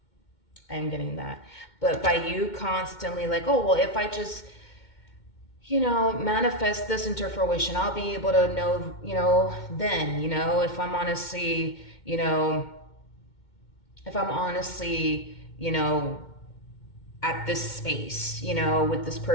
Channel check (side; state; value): right; late; 2.2 ms